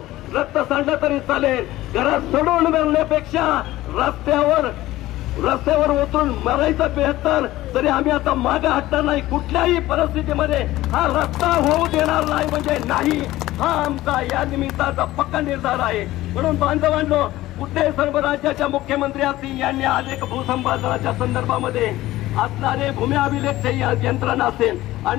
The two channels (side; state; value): right; quieter; 16.4 dB